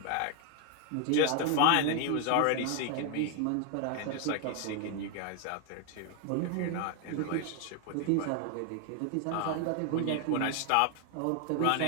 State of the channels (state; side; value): different; both; correlation 0.00